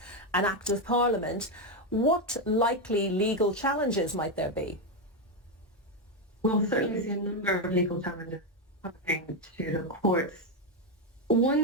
an act of Parliament, what likely legal challenges might there be? We'll certainly see a number of legal challenges coming to the courts.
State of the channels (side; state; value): both; normal; correlation 0.06